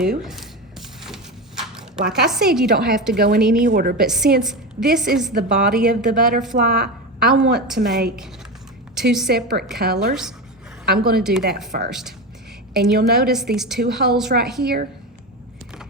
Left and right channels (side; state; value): both; normal; correlation 0.21